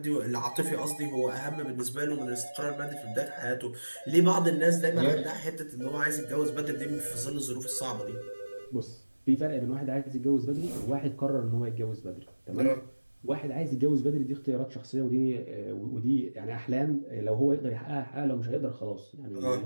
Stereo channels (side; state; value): both; inverted; correlation -1.00